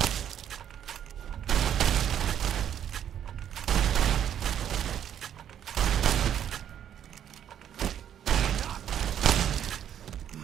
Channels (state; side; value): quieter; left; 9.8 dB